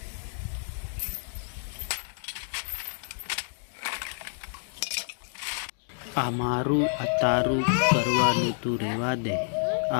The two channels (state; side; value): silent; right; digital silence